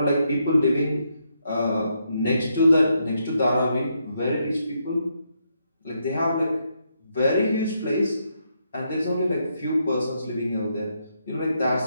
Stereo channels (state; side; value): inverted; both; correlation -0.78